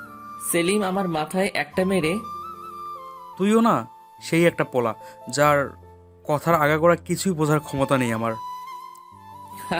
সেলিম আমার মাথায় একটা মেরে তুইও না সেই একটা পোলা, যার কথার আগাগোড়া কিছুই বোঝার ক্ষমতা নেই আমার।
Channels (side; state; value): both; identical; correlation 1.00